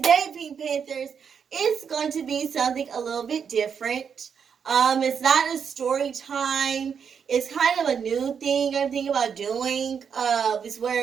Pink Panthers, it's going to be something a little bit different. It's not a story time. It's kind of a new thing I'm thinking about doing. It's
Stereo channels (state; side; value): quieter; left; 7.0 dB